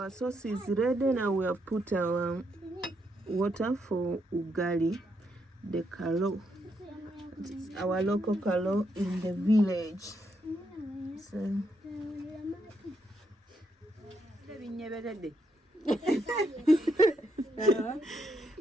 sauce is ready. Now we have put our water for ugali, the kalo. It's our local kalo in the village. So,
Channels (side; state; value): both; normal; correlation 0.78